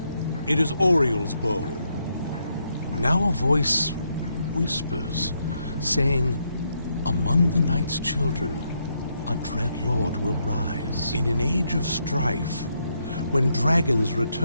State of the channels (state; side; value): inverted; both; correlation -0.78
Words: It is Oriel's bow. Now a voice whispers, saying, "Among the night's children, a dread lord will rise. In an age of strife, when dragons